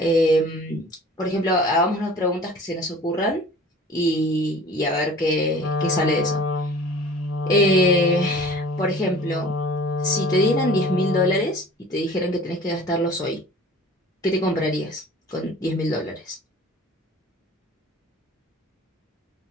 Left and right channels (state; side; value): normal; both; correlation 0.45